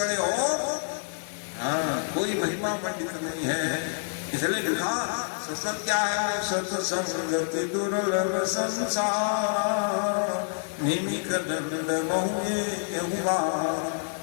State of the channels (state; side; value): silent; right; 60 dB below the other